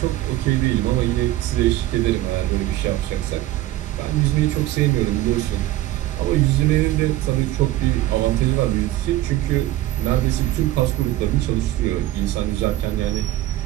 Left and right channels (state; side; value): quieter; left; 15.3 dB